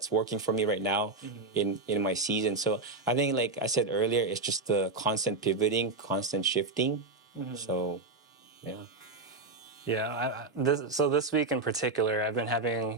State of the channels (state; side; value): quieter; left; 3.6 dB